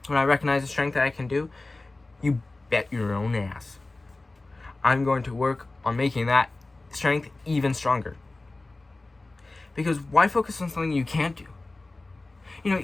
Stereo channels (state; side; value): quieter; right; 3.1 dB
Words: I recognize the strength that I can do, you bet your own ass I'm going to work on making that strength even stronger. Because why focus on something you can't do? You know,